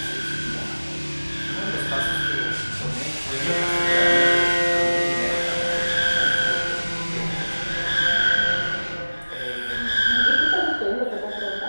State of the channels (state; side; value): inverted; both; correlation -1.00